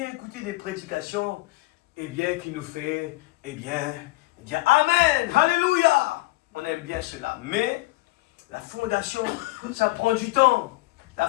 écouter des prédications, qui nous fait, dire Amen, Alléluia. On aime bien cela. Mais la fondation, ça prend du temps. La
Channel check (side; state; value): right; quieter; 21.1 dB